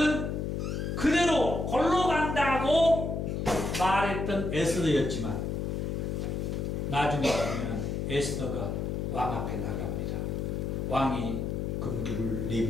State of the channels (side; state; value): left; noise; hum, 2 dB below the sound